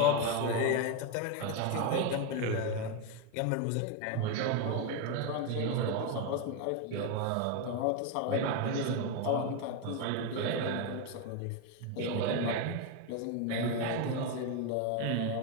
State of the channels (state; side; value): different; both; correlation 0.02